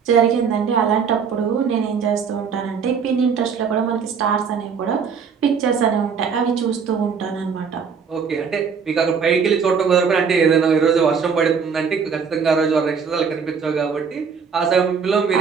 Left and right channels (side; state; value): left; quieter; 6.2 dB